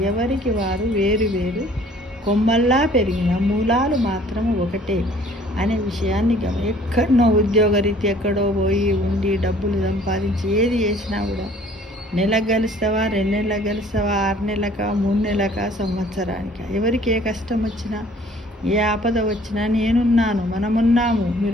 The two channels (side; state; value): both; normal; correlation 0.54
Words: ఎవరికి వారు వేరు వేరు కొమ్మల్లా పెరిగిన మూలాలు మాత్రం ఒకటే అనే విషయాన్ని ఎక్కడో ఉద్యోగరీతి ఎక్కడో పోయి ఉండి డబ్బులు సంపాదించి ఏది చేసినా కూడా నెలకు గెలుస్తావా, 2 నెలలకు గెలుస్తావా, 6 నెలలకా, 3 నెలలకా, సంవత్సరానికి ఎవరికి ఏ కష్టం వచ్చినా ఏ ఆపద వచ్చినా నేనున్నాను, మనమున్నాము,